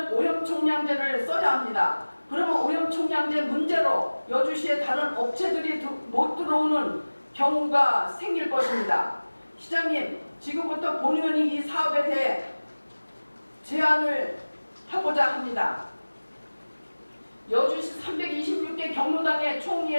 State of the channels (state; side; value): inverted; both; correlation -1.00